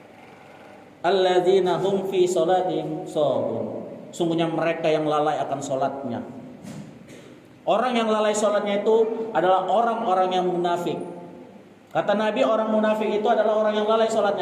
Alladzina hum fi sholatin sahun. Sungguhnya mereka yang lalai akan salatnya. Orang yang lalai salatnya itu adalah orang-orang yang munafik. Kata Nabi, orang munafik itu adalah orang yang lalai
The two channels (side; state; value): both; identical; correlation 1.00